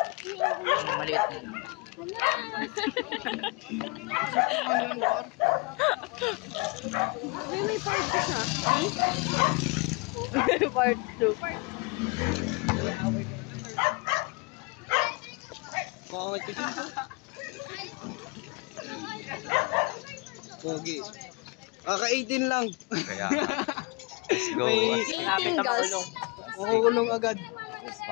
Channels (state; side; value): quieter; right; 28.1 dB